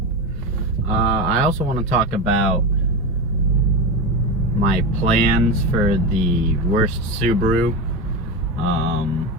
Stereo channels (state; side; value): normal; both; correlation 0.19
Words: I also want to talk about my plans for the worst Subaru.